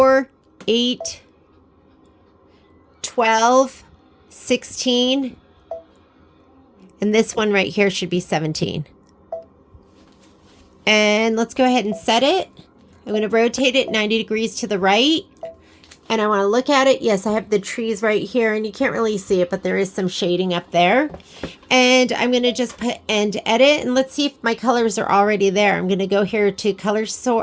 8, 12, 16. And this one right here should be 17. And let's go ahead and set it. I'm going to rotate it 90 degrees to the right. And I want to look at it. Yes, I have the trees right here, and you can't really see it, but there is some shading up there. And I'm going to just put end edit, and let's see if my colors are already there. I'm going to go here to color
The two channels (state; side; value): identical; both; correlation 1.00